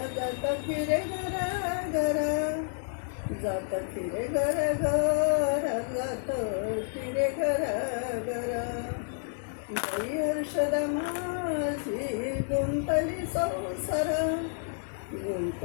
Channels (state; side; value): silent; right; digital silence